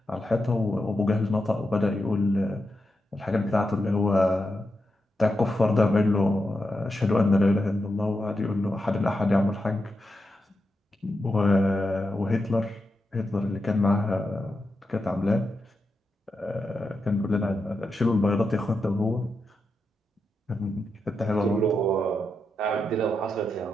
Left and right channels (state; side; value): normal; both; correlation 0.87